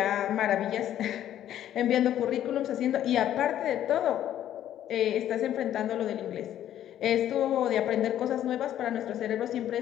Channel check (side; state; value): right; quieter; 11.4 dB